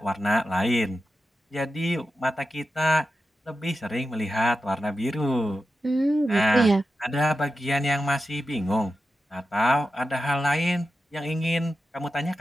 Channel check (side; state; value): both; normal; correlation 0.91